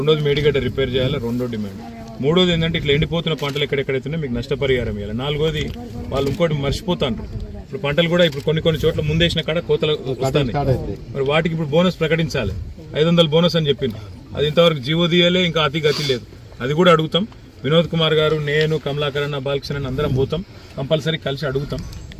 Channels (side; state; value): both; identical; correlation 1.00